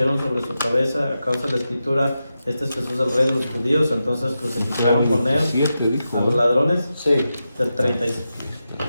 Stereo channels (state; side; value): inverted; both; correlation -0.90